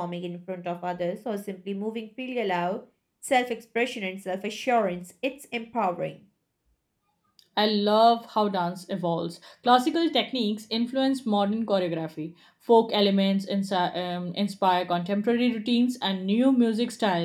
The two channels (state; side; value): identical; both; correlation 1.00